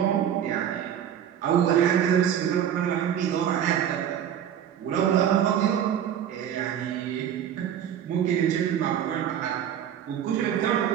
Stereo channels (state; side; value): quieter; left; 9.6 dB